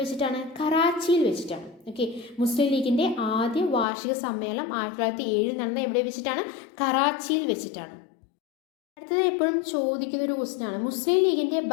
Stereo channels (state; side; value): drops out; right; at 3.9 s